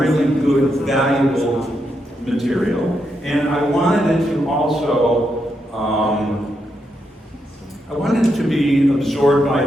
good, valuable material. And I wanted it to also, I wanted it to be absorbed by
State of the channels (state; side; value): normal; both; correlation 0.82